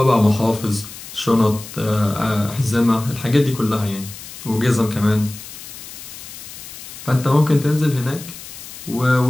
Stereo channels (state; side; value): noise; left; hiss, 14 dB below the sound